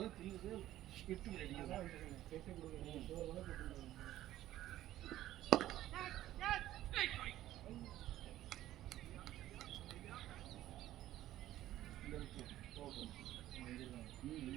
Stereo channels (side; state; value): left; quieter; 13.9 dB